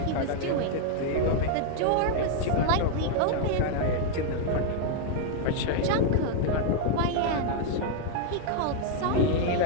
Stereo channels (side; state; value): both; different; correlation 0.00